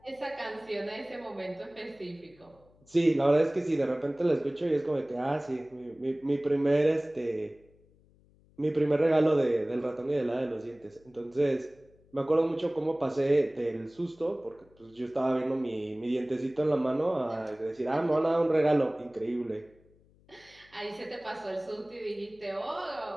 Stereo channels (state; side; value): noise; left; hum, 30 dB below the sound